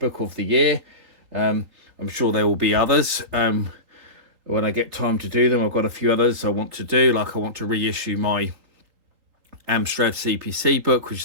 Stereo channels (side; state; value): left; late; 3.8 ms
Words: of the year. I'm sure there will be others when I get time to do them. I've got a few others I want to do, like I want to reissue my Amstrad CPC book, which